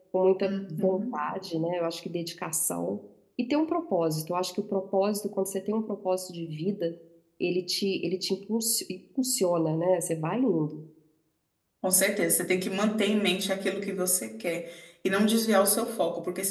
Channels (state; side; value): identical; both; correlation 1.00